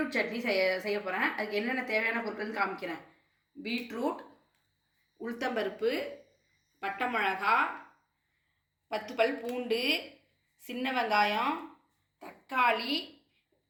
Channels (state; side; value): identical; both; correlation 1.00